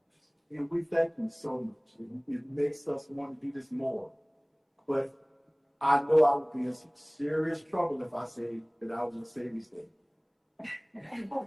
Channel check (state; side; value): identical; both; correlation 1.00